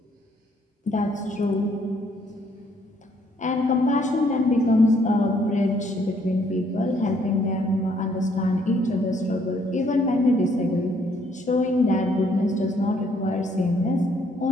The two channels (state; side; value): normal; both; correlation 0.67